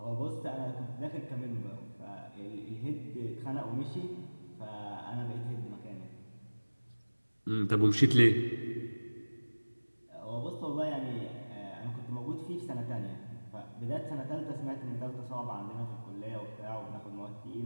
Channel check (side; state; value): both; inverted; correlation -1.00